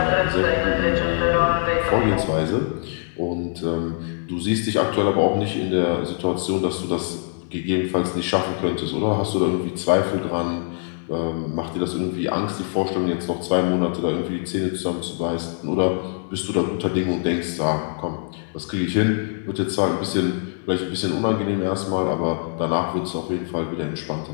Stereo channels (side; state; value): right; silent; 63 dB below the other